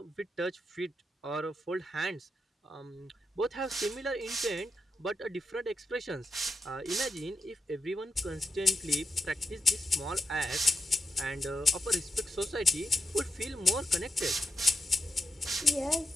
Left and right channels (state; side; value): normal; both; correlation 0.86